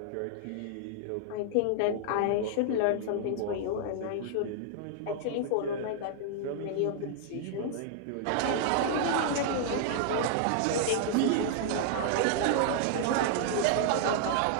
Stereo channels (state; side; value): different; both; correlation -0.01